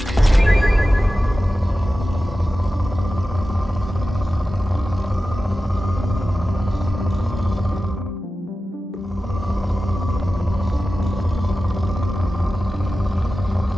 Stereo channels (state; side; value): normal; both; correlation 0.94